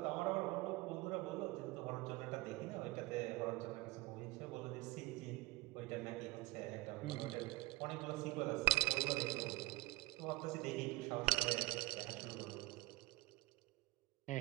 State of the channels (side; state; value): left; quieter; 19.4 dB